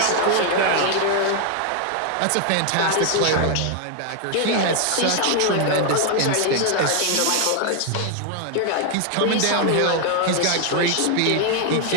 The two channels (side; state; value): both; different; correlation 0.00